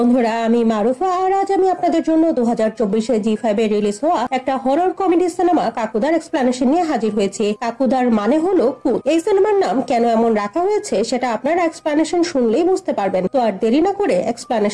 আমি মারুফা আর আজ আমি আপনাদের জন্য 2024 জি5 এ রিলিজ হওয়া একটা হরর কমেডি সিনেমা কাকুদার এক্সপ্লেনেশন নিয়ে হাজির হয়েছি। কাকুদার মানে হলো ভূত। এই সিনেমার নাম কেন এমন রাখা হয়েছে সেটা আপনারা এক্সপ্লেনেশন শুনলেই বুঝতে পারবেন। তো আর দেরি না করে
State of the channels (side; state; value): both; identical; correlation 1.00